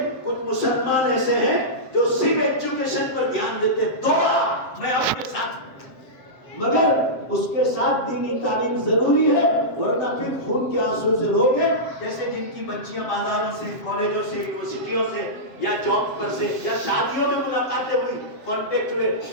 کچھ مسلمان ایسے ہیں جو صرف ایجوکیشن پر دھیان دیتے ہیں، دعا میں آپ کے ساتھ، مگر اس کے ساتھ دینی تعلیم ضروری ہے، ورنہ پھر خون کے آنسو سے روگے، جیسے جن کی بچیاں بازاروں سے، کالجوں سے، یونیورسٹیوں سے یا جاب پر سے یا شادیوں میں ملاقاتیں ہوئی، کانٹیکٹ ہوئے،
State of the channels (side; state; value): right; late; 7.6 ms